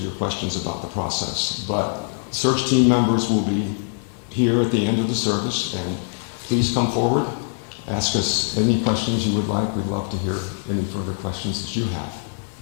questions about the process. But search team members will be here at the end of the service, and please come forward, ask us any questions you would like. We'd love to hear any further questions that you have.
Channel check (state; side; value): silent; right; 64 dB below the other